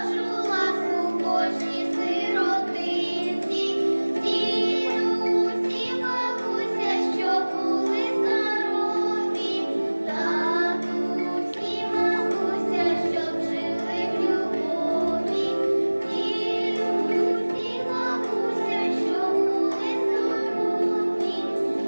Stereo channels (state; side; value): inverted; both; correlation -1.00